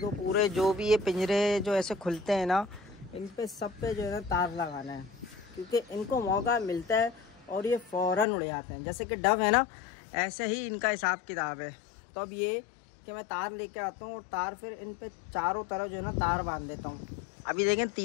पूरे जो भी ये पिंजरे जो ऐसे खुलते हैं ना, इन पे सब पे जो है ना तार लगाना है, क्योंकि इनको मौका मिलता है और ये फ़ौरन उड़ जाते हैं। जैसे कि डव है ना, ऐसे ही इनका हिसाब किताब है। तो अब ये कि मैं तार लेके आता हूँ और तार फिर इन पे चारों तरफ जो है ना तार बांध देता हूँ। अभी देखें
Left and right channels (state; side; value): drops out; right; at 8.2 s